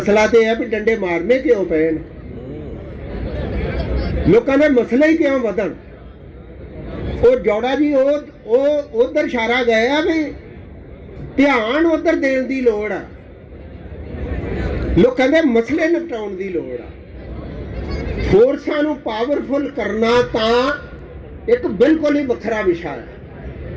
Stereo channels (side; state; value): both; identical; correlation 1.00